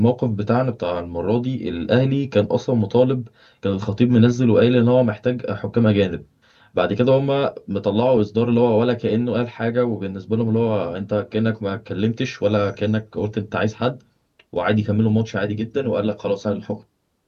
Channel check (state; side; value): identical; both; correlation 1.00